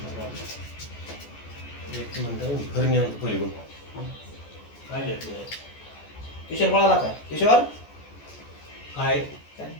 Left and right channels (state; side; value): late; right; 14 ms